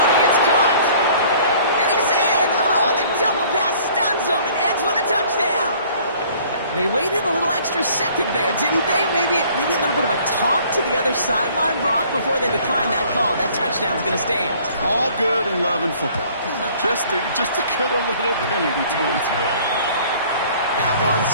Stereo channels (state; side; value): inverted; both; correlation -0.55